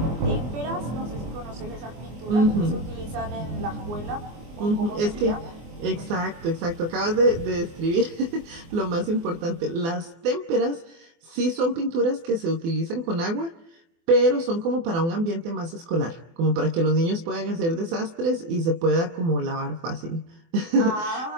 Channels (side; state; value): left; late; 24 ms